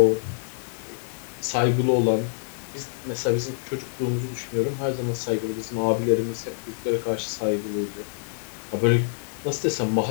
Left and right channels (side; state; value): right; silent; 61 dB below the other